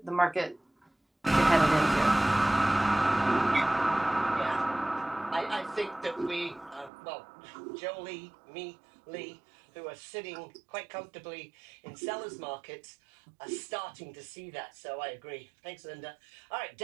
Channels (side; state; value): left; drops out; at 6.9 s